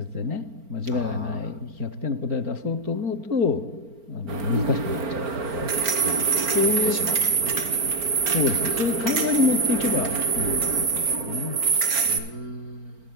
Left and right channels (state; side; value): late; left; 4.4 ms